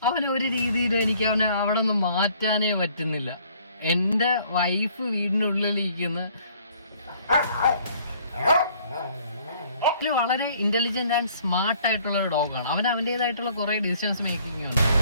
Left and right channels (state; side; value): inverted; both; correlation -0.59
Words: അവന് ഒരു രീതിയിൽ എനിക്ക് അവനെ അവിടെ നിന്ന് മാറ്റാനേ പറ്റുന്നില്ല. എൻ്റെ വൈഫ് വീടിനുള്ളിലിരിക്കുന്ന വളരെ ഇന്റലിജന്റ് ആൻഡ് സ്മാർട്ട് ആയിട്ടുള്ള ഒരു ഡോഗാണ്. അവൻ അവൻ്റെതായിട്ടുള്ള കുറെ ഡിസിഷൻസ് മേക്കിംഗ് ഉണ്ട്.